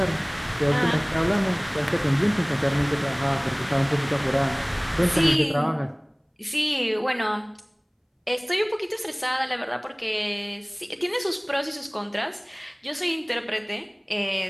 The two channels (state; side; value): identical; both; correlation 1.00